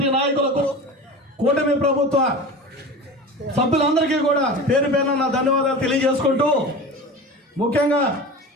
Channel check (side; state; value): both; normal; correlation 0.32